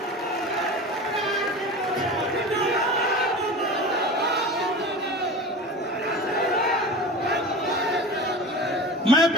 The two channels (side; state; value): both; normal; correlation 0.32